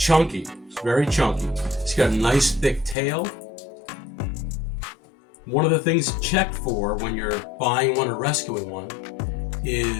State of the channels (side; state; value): right; drops out; at 3.0 s